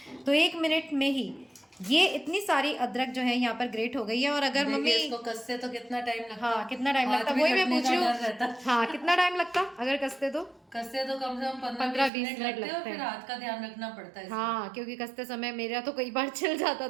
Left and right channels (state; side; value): drops out; left; at 12.1 s